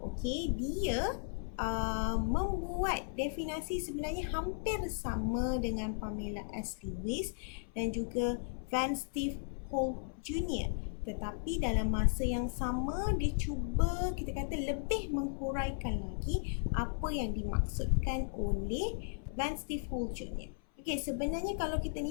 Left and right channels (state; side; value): silent; right; 54 dB below the other